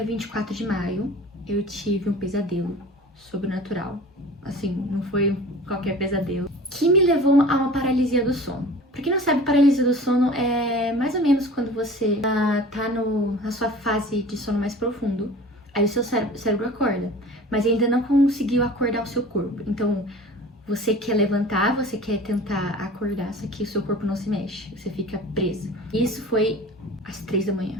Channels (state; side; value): normal; both; correlation 0.41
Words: 24 de maio, eu tive um pesadelo sobrenatural. Assim, não foi qualquer pesadelo. Que me levou a uma paralisia do sono. Pra quem não sabe, paralisia do sono é mais ou menos quando você tá na sua fase de sono mais profundo. Aí o seu cérebro acorda, mas ainda não conseguiu acordar o seu corpo. Então, você quer levantar, você quer tentar acordar, só que o seu corpo não se mexe, você fica preso. Isso foi às 3 da